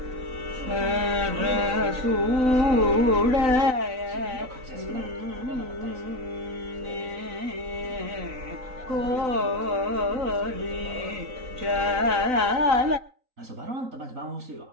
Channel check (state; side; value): late; left; 3.9 ms